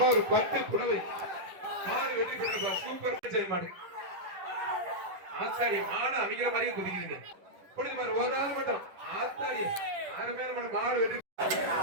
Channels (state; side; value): late; left; 11 ms